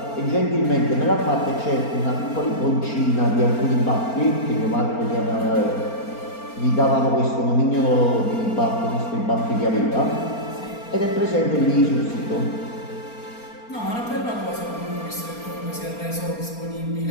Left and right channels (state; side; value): late; right; 4.3 ms